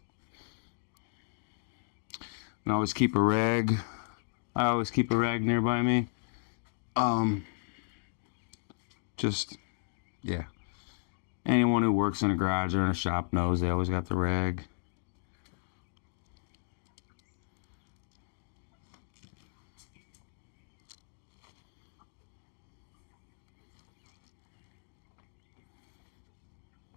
And I always keep a rag. I always keep a rag nearby me. Just, yeah. Anyone who works in a garage or in a shop knows they always got the rag.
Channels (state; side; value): silent; right; digital silence